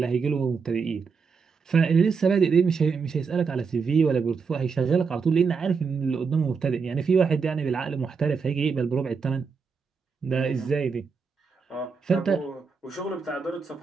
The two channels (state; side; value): quieter; left; 5.4 dB